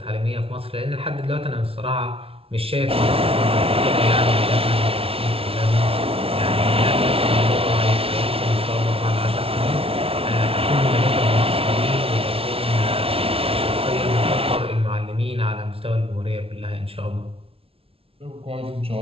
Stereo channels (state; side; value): late; left; 0.27 ms